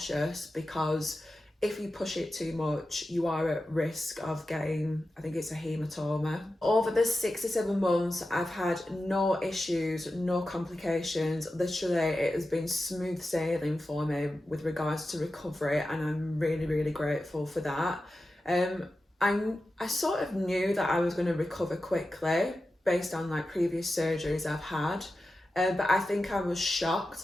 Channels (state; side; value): normal; both; correlation 0.92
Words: because if you push it too much, you are at risk of getting, I think it's a hematoma. Over the 6 to 7 months, I've had no issues, no complications. Literally, it has been smooth sailing for me with regards to recovery, and I'm really grateful for that. I sort of knew that I was going to recover quickly based on like previous surgeries I've had, but I think I was shocked